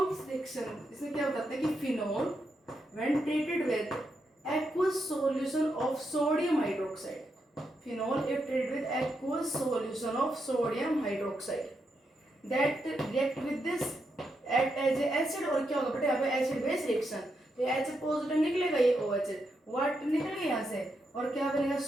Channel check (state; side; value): normal; both; correlation 0.83